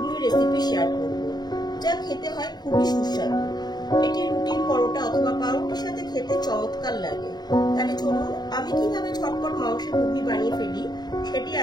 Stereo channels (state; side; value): late; right; 0.20 ms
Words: রেসিপি শেয়ার করব, যা খেতে হয় খুবই সুস্বাদু। এটি রুটি, পরোটা অথবা পাউরুটির সাথে খেতে চমৎকার লাগে। তাহলে চলুন আমি কিভাবে ঝটপট মাংসের ঘুগনি বানিয়ে ফেলি সেটি